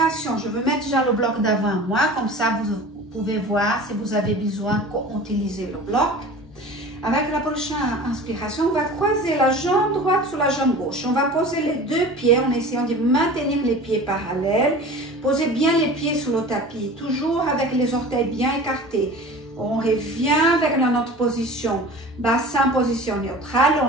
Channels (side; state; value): both; normal; correlation 0.39